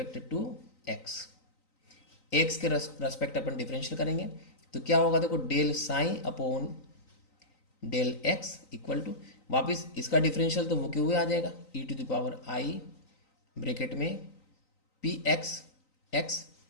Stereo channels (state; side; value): late; right; 3.9 ms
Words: to x, x के रेस्पेक्ट अपन डिफरेंशियल करेंगे तो क्या होगा, देखो del psi upon del x equal to वापस इसका डिफरेंशियल तो वो क्यों हुए आ जाएगा, e to the power i bracket में पी एक्स एक्स